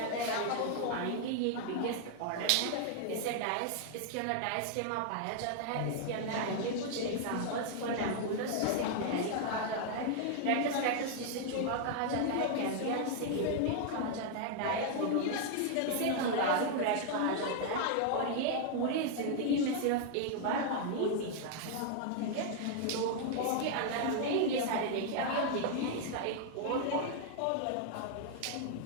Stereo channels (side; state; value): both; different; correlation 0.00